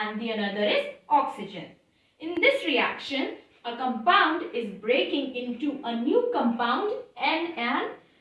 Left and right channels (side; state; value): both; identical; correlation 1.00